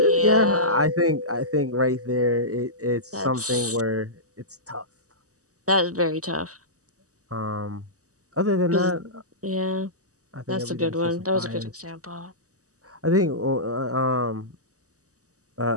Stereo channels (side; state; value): left; late; 0.66 ms